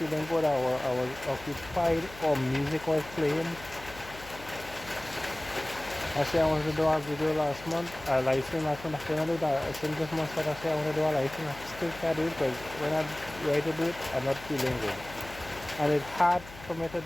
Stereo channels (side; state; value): left; noise; hum, 17 dB below the sound